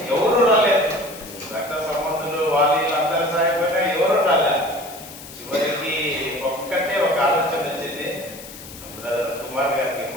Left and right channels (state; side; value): noise; left; hiss, 15 dB below the sound